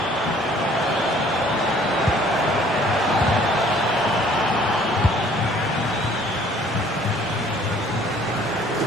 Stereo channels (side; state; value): both; normal; correlation 0.57